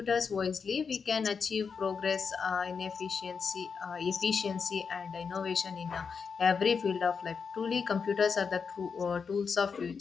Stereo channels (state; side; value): quieter; right; 5.7 dB